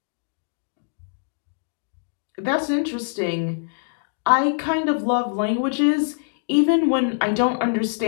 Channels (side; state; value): right; silent; digital silence